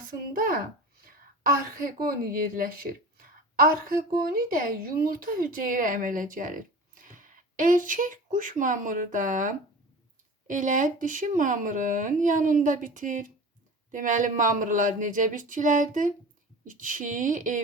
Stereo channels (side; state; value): both; normal; correlation 0.36